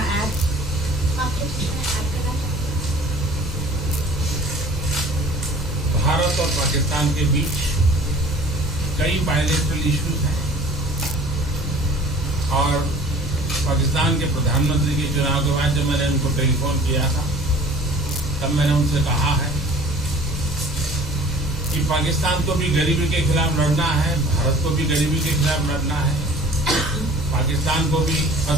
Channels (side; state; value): both; normal; correlation 0.47